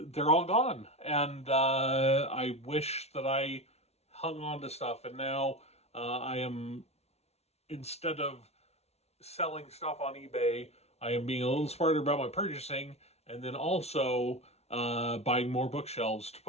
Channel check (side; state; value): right; late; 0.31 ms